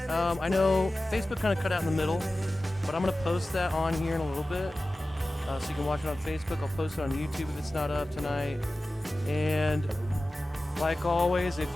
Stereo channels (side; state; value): both; normal; correlation 0.95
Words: I know Facebook kind of cut out in the middle, but I'm going to post that on here in a little bit. So you can watch it on Facebook. I'll post it on YouTube if it's not up tonight. And like always, if